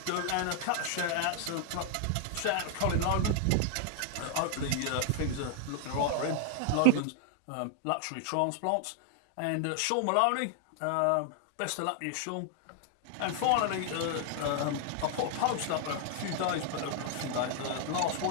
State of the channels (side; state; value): both; different; correlation 0.00